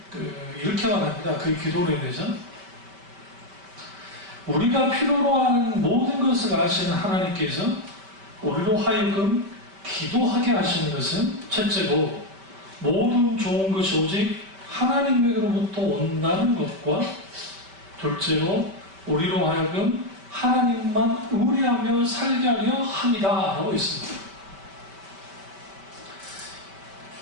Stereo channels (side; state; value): left; late; 5.2 ms